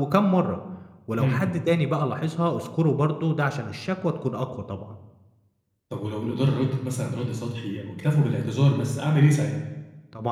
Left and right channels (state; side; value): identical; both; correlation 1.00